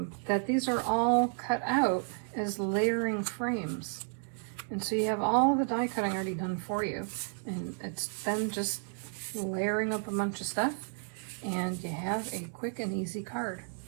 that these are all cut out as layering frames. And so you have all the die cutting already done for you, and it's then just layering up a bunch of stuff, and you have a quick and easy card.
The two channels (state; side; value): silent; left; 56 dB below the other